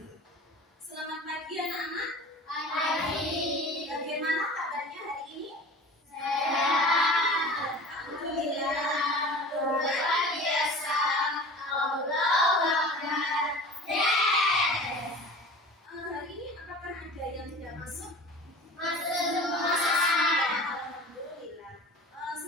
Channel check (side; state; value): both; normal; correlation 0.38